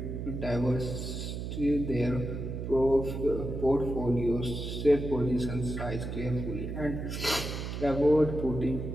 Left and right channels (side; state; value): right; noise; hum, 5 dB below the sound